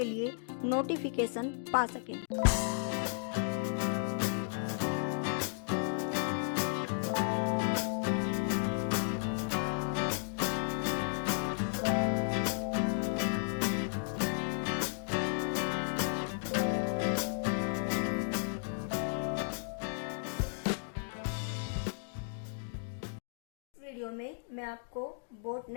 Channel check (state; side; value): silent; right; digital silence